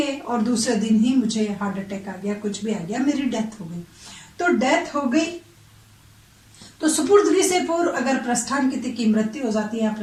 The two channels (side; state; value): both; identical; correlation 1.00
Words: और दूसरे दिन ही मुझे हार्ट अटैक आ गया, कुछ भी आ गया, मेरी डेथ हो गई। तो डेथ हो गई तो सुपुर्दगी से पूर्व अगर प्रस्थांकित की मृत्यु हो जाती है,